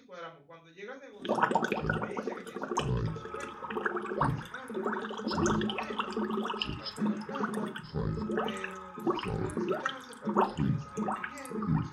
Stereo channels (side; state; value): both; identical; correlation 1.00